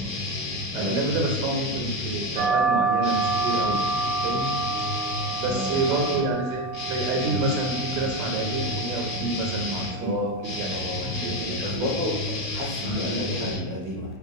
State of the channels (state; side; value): late; left; 16 ms